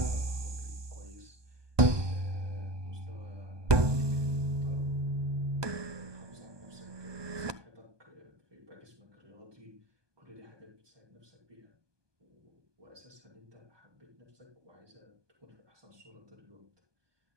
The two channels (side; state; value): left; late; 1.2 ms